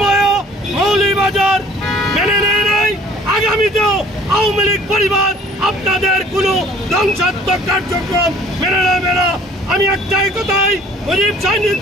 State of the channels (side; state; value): both; normal; correlation 0.53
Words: মৌলভীবাজার মেনে নেয় নাই, আগামীতেও আওয়ামী লীগ পরিবার আপনাদের কোনো ধ্বংসাত্মক কার্যক্রম মেনে নেবে না। আমি একটাই কথাই মুজিব